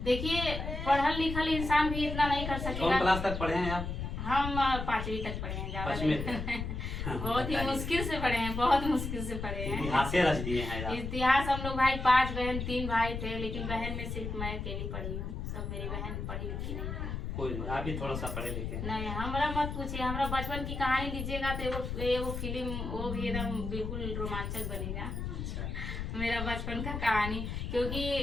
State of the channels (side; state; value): left; noise; rumble, 4 dB below the sound